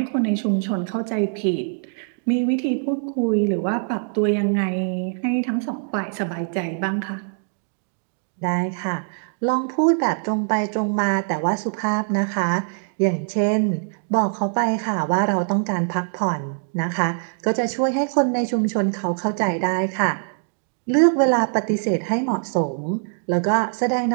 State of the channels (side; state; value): left; silent; 58 dB below the other